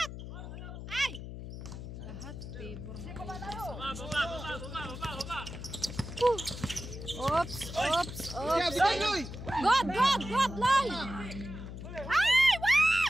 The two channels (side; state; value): left; noise; hum, 10 dB below the sound